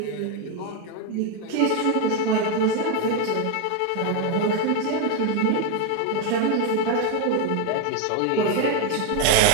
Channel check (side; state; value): both; different; correlation 0.01